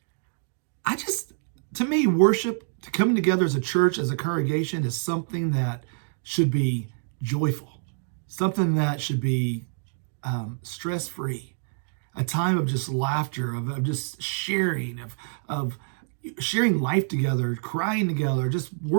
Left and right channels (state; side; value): silent; left; digital silence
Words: to me, worship, to coming together as a church, as a congregation, is something that should be joyful, something that should be stress-free, a time of just laughter, of just sharing, of sharing life together, crying together, just